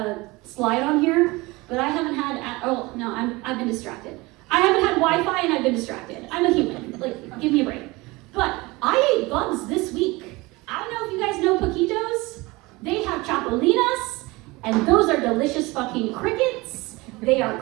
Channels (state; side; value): quieter; left; 22.9 dB